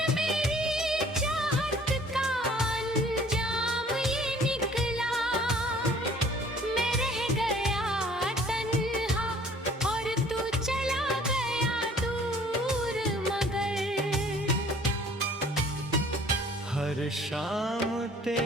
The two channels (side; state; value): both; normal; correlation 0.54